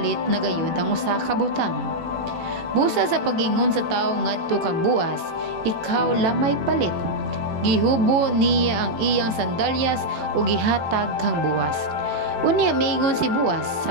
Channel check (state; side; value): late; left; 18 ms